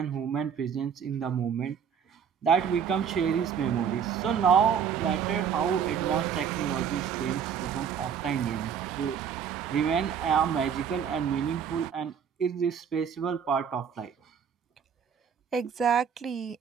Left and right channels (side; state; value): left; quieter; 7.5 dB